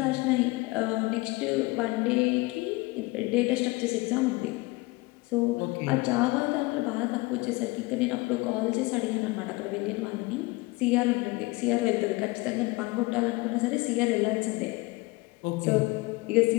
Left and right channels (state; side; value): quieter; right; 23.2 dB